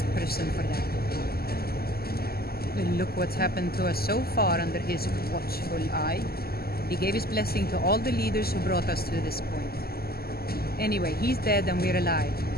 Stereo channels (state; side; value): late; right; 0.45 ms